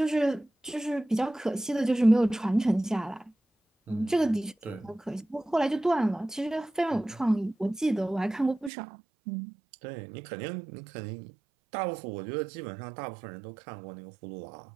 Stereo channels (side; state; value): left; drops out; at 8.7 s